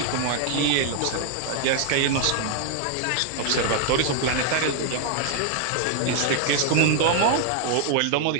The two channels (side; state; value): both; different; correlation 0.00